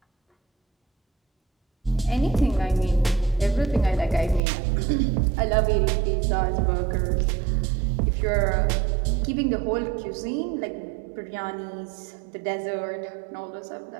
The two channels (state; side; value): drops out; left; at 4.4 s